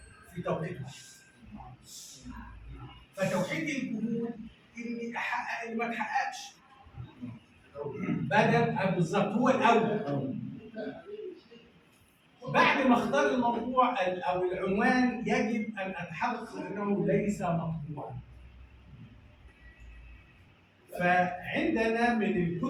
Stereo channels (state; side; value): identical; both; correlation 1.00